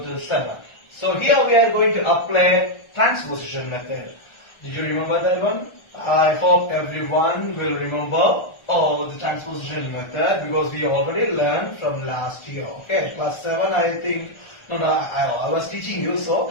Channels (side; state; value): right; late; 1.3 ms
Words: to 7. So, here we are going to apply transposition method. Did you remember that one? I hope everyone will remember the transposition method because we already learned from last year. Okay, class 7 I think. No, I was teaching you, so